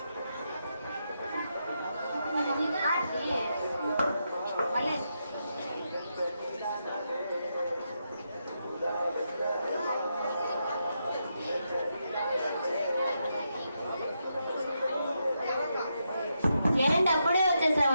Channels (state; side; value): inverted; both; correlation -0.83